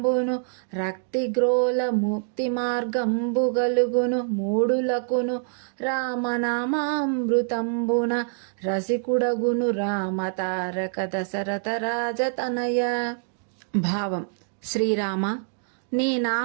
రక్తిగ్రోల ముక్తి మార్గంబు గలుగును మూడులకును. రామనామామృతంబున రసికుడగును రామతారక దశరథ రాజతనయ. భావం: శ్రీరామ, నీ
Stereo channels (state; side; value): silent; left; digital silence